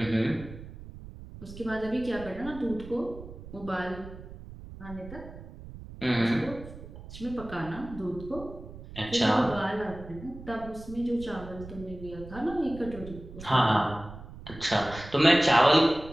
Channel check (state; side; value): noise; right; rumble, 14 dB below the sound